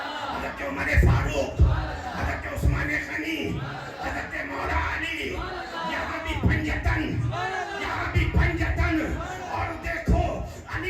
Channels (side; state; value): both; identical; correlation 1.00